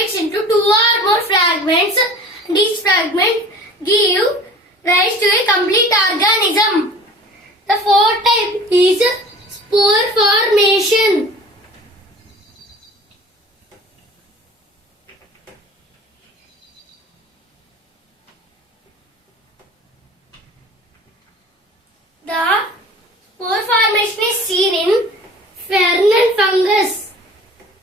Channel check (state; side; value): normal; both; correlation 0.43